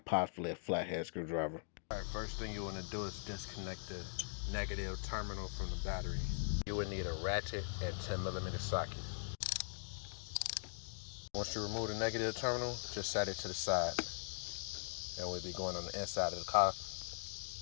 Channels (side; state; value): right; silent; digital silence